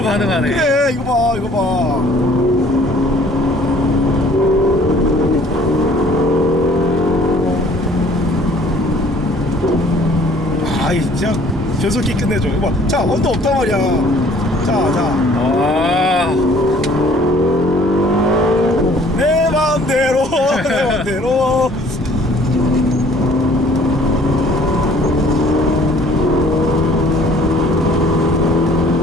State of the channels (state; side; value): normal; both; correlation 0.55